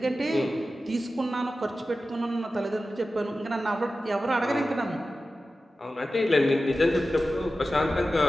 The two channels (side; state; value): both; normal; correlation 0.94